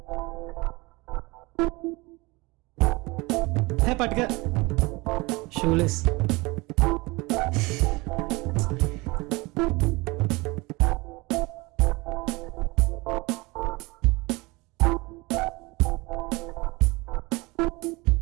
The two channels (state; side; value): quieter; left; 24.0 dB